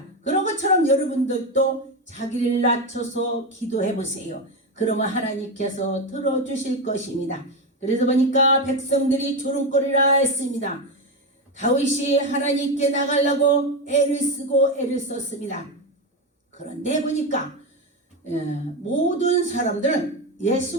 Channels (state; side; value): normal; both; correlation 0.13